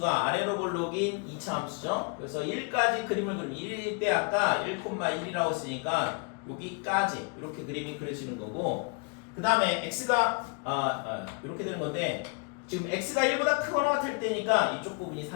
아래로 볼록인 2차 함수죠. 그래서 1까지 그림을 그리면 1일 때 아까 1,1이라고 했으니까 여기까지 이렇게 그림이 그려지는 거고, 그 다음에 x가 이렇게 되는 건데 지금 x가 1보다 크거나 같을 때니까 이쪽 부분이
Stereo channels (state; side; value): quieter; right; 34.9 dB